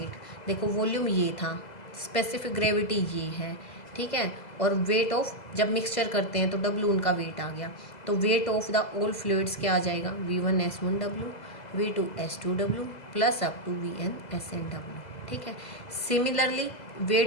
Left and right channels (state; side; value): late; right; 2.0 ms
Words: देखो वॉल्यूम ये था, स्पेसिफिक ग्रेविटी ये है, ठीक है, और वेट ऑफ जब मिक्सचर करते हैं तो W उनका वेट आ गया, तो weight of the all fluids क्या आ जाएगा, V1S1W, V2S2W plus up to VNSNW, ठीक है। सिमिलरली